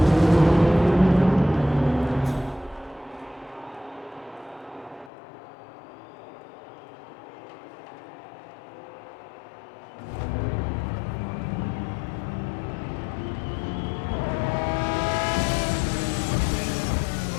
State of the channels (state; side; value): drops out; right; at 5.1 s